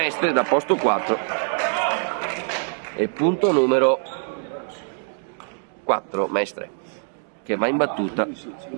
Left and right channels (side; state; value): left; silent; digital silence